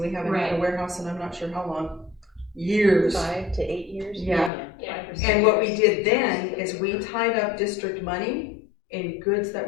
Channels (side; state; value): right; drops out; at 4.5 s